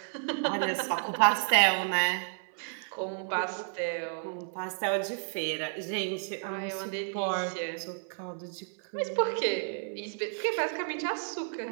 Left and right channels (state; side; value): silent; left; 57 dB below the other